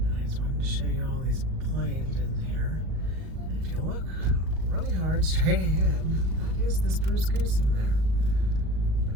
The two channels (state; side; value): late; left; 38 ms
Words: I just wanted to show you all these planes in here. And if you look really hard straight ahead, that is the Spruce Goose in there. But